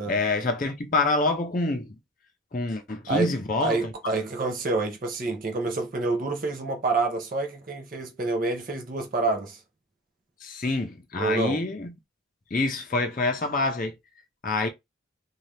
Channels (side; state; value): both; normal; correlation 0.30